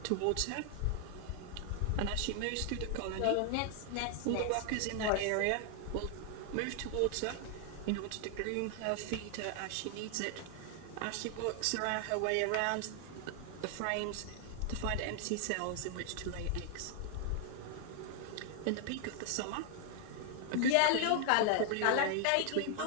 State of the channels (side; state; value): both; different; correlation 0.00